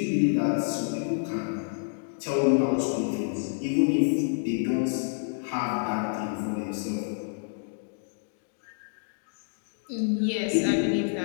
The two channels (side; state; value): right; silent; digital silence